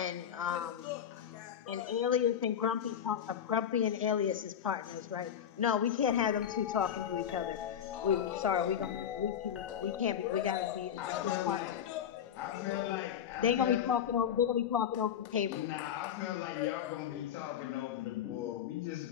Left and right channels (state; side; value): quieter; right; 9.1 dB